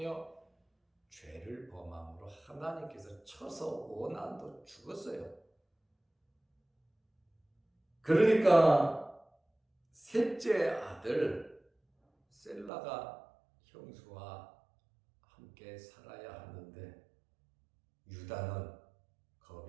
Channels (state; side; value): drops out; left; at 12.7 s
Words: 죄를 범함으로 하나님께서 쳐서 오난도 죽었어요. 그러니까 셋째 아들 셀라가 형수와 함께 살아야 하는데 유다는